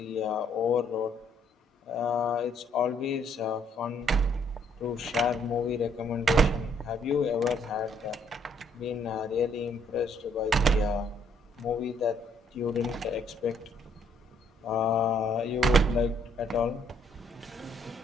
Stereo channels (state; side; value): normal; both; correlation 0.67